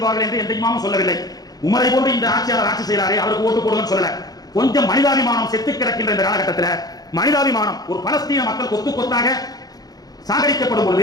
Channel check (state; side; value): late; right; 0.19 ms